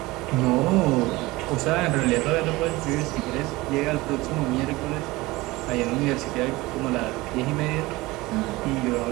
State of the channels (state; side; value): quieter; left; 20.7 dB